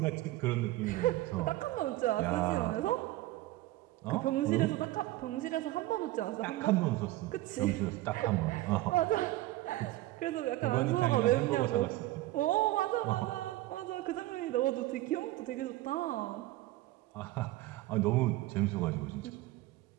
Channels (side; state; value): left; quieter; 17.1 dB